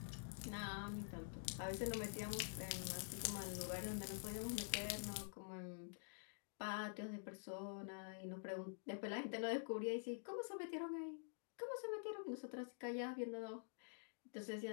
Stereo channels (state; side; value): silent; right; digital silence